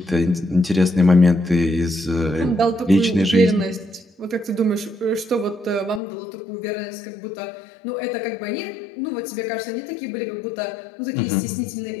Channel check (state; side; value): drops out; right; at 6.0 s